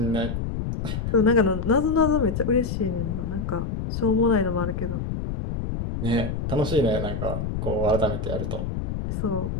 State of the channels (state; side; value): noise; left; rumble, 3 dB below the sound